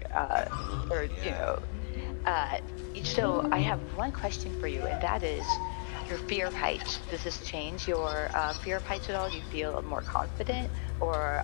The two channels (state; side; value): silent; right; digital silence